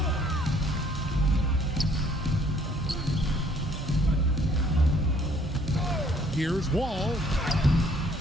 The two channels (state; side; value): normal; both; correlation 0.61